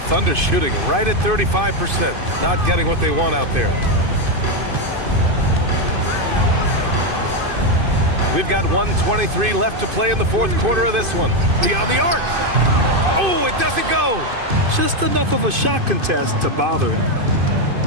Thunder shooting right at 35%. Not getting what they want out there. We've got 1:23 left to play in the fourth quarter of this one. Beyond the arc. Oh, it doesn't go. Just enough of a shot contest to bother him.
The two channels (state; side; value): late; left; 2.5 ms